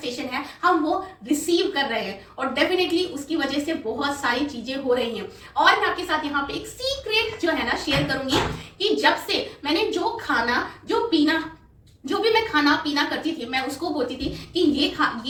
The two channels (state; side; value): identical; both; correlation 1.00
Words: है, हम वो रिसीव कर रहे हैं और डेफिनेटली उसकी वजह से बहुत सारी चीजें हो रही हैं। और मैं आपके साथ यहाँ पे एक सीक्रेट जो है ना शेयर करूंगी कि जब से मैंने जो भी मैं खाना पीना करती थी, मैं उसको बोलती थी कि